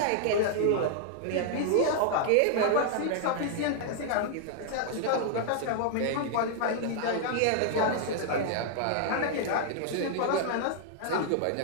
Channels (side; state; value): both; different; correlation -0.01